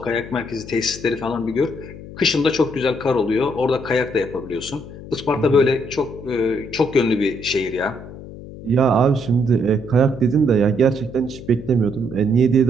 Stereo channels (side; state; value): left; noise; hum, 14 dB below the sound